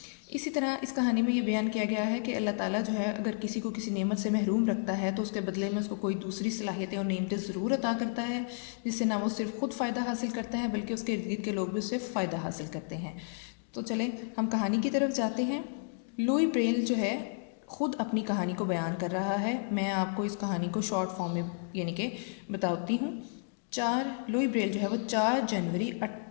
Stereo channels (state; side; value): silent; right; digital silence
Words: इसी तरह इस कहानी में ये बयान किया गया है कि अल्लाह ताला जो है अगर किसी को किसी नेमत से महरूम रखता है तो उसके बदले में उसको कोई दूसरी सलाहियतें और नेमतें ज़रूर अता करता है, जिससे ना वो सिर्फ खुद फ़ायदा हासिल करता है बल्कि उसके इर्द गिर्द के लोग भी उससे फ़ायदा हासिल करते हैं। तो चलें हम कहानी की तरफ जाते हैं। लुई ब्रेल जो है ख़ुद अपनी कहानी को बयान कर रहा है। मैं आपको इस कहानी को शॉर्ट फॉर्म में यानी कि बताती हूँ। लुई ब्रेल जो है वो 4 जनवरी